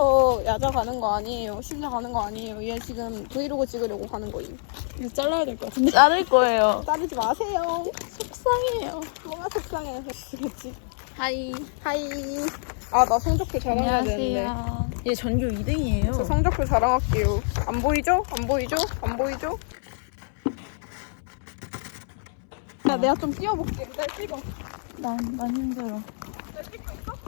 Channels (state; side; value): silent; right; 61 dB below the other